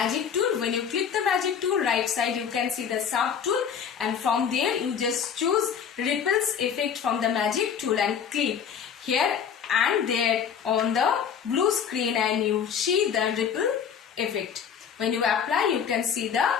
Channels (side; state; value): right; quieter; 7.5 dB